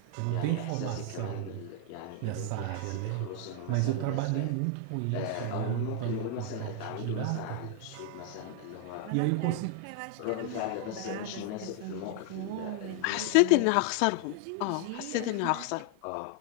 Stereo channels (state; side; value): different; both; correlation 0.00